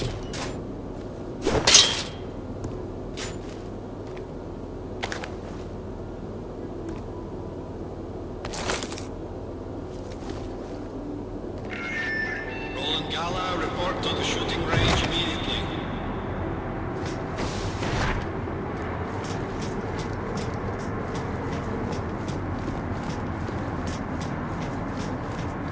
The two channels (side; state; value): both; identical; correlation 1.00